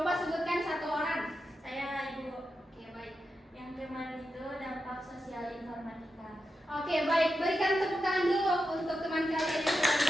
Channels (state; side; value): normal; both; correlation 0.88